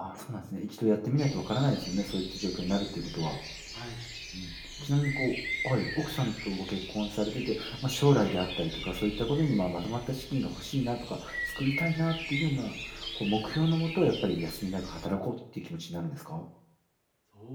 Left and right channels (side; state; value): both; identical; correlation 1.00